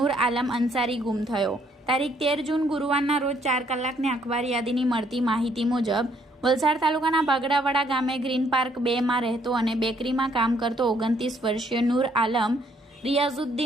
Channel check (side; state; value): both; normal; correlation 0.67